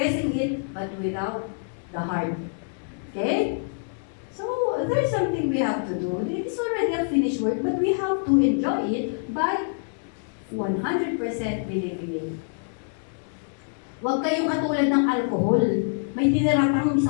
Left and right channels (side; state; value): right; silent; digital silence